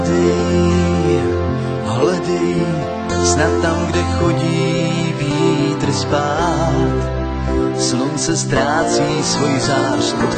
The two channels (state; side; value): identical; both; correlation 1.00